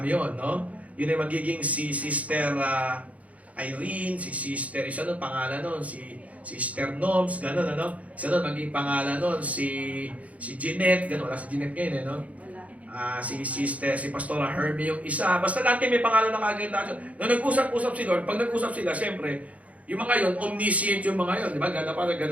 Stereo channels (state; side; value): late; left; 0.068 ms